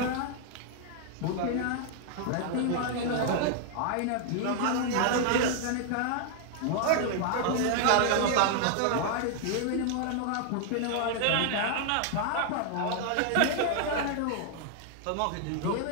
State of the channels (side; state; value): both; different; correlation 0.00